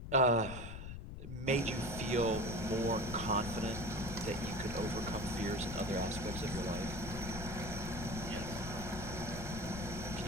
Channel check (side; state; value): left; noise; rumble, 8 dB below the sound